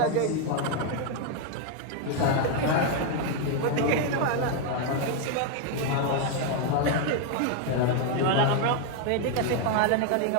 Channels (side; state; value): both; different; correlation 0.01